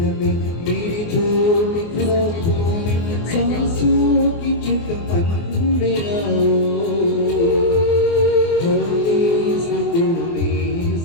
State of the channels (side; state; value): right; late; 24 ms